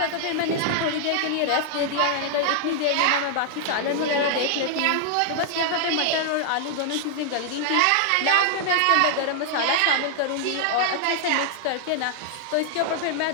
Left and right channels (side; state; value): both; different; correlation -0.01